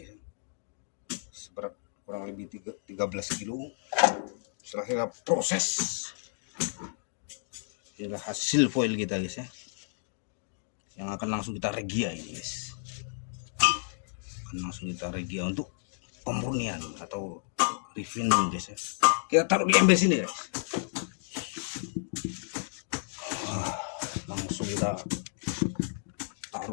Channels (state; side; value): silent; right; digital silence